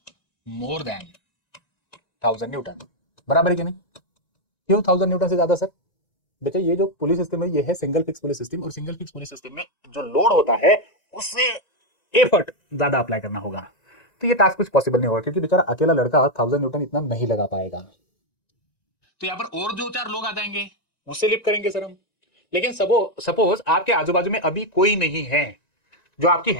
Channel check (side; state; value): right; late; 1.9 ms